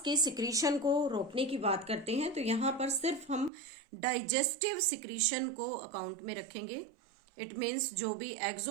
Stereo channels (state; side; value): drops out; left; at 3.5 s